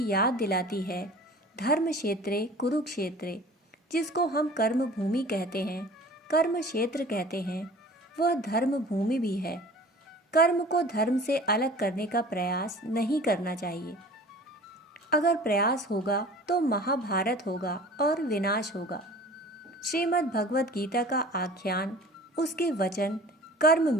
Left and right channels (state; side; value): normal; both; correlation 0.44